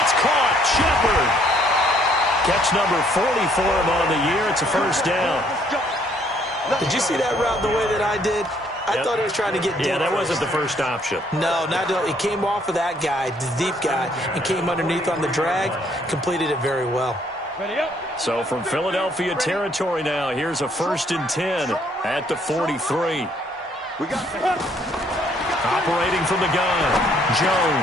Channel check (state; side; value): normal; both; correlation 0.66